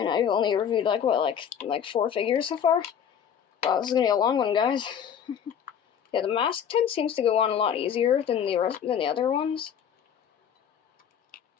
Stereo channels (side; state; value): right; quieter; 8.4 dB